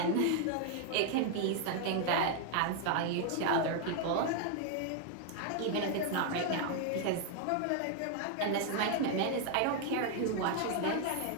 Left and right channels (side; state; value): both; different; correlation 0.00